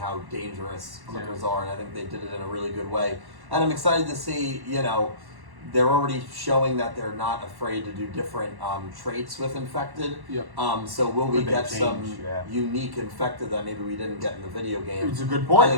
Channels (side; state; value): left; late; 1.1 ms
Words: dangerous clickers are, and I think they did it in a really good way. and I'm excited to see, you know, they're already showing that they're not afraid to do different traits with infected. Yep. So will we Could they get change? some Yeah. unique infected that maybe we didn't get in the video game? It's a good point. I